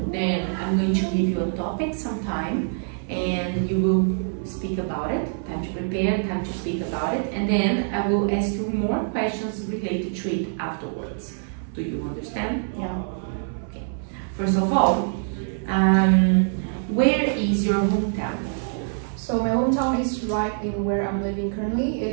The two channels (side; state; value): left; silent; 60 dB below the other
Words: Then I'm going to give you a topic sometime, and you will speak about it. Time to prepare, time to speak about it. And then I will ask you more questions related to it afterwards. Do you understand? Yeah. Okay. First of all, where is your hometown? So my hometown is right in where I'm living currently.